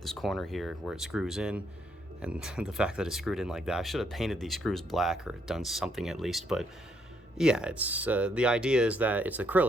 this corner here where it screws in. And the fact that it's screwed in like that, I should have painted these screws black or done something at least. But yeah, it's the idea is that it's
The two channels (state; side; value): normal; both; correlation 0.73